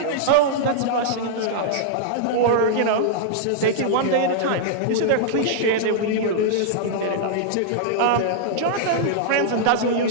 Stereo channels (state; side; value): different; both; correlation -0.01